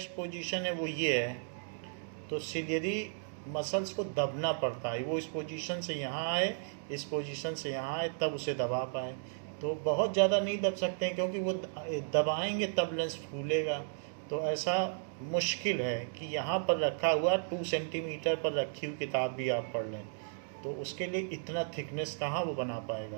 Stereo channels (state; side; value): silent; left; digital silence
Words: पोजीशन है वो ये है. तो सिलियरी मसल्स को दबना पड़ता है. वो इस पोजीशन से यहाँ आए, इस पोजीशन से यहाँ आए, तब उसे दबा पाए. तो बहुत ज़्यादा नहीं दब सकते हैं क्योंकि वो दबाएंगे तब लेंस फूलेगा. तो ऐसा मुश्किल है कि यहाँ पर रखा हुआ 2 सेंटीमीटर पर रखी हुई किताब भी आप पढ़ लें तो उसके लिए इतना थिकनेस कहाँ वो बना पाएगा.